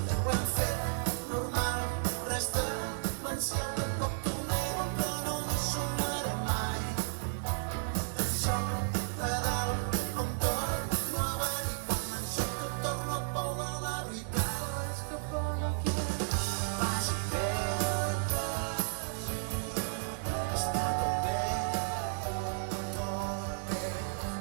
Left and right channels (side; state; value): left; silent; digital silence